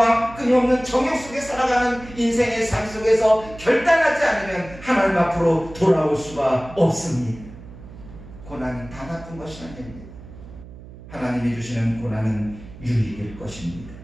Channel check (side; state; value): right; noise; hum, 17 dB below the sound